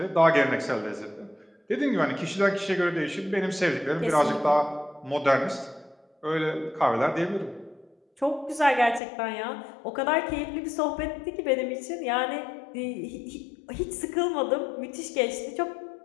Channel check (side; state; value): right; drops out; at 9.0 s